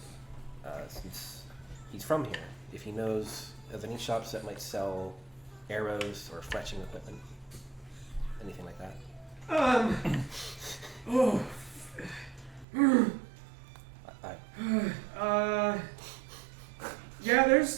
since he's from here, if he knows of any shops that might sell arrows or fletching equipment. Anything like that. Yeah,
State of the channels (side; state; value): left; drops out; at 12.7 s